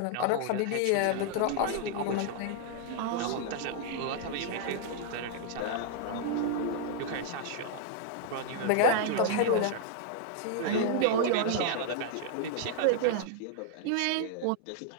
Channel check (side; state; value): both; different; correlation -0.01